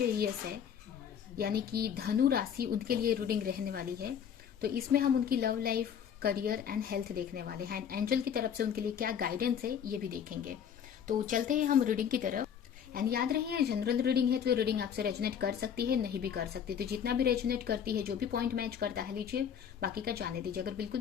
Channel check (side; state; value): right; quieter; 8.3 dB